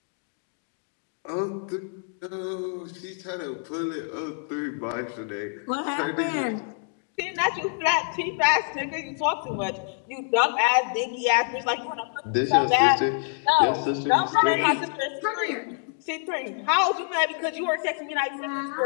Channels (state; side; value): silent; right; 61 dB below the other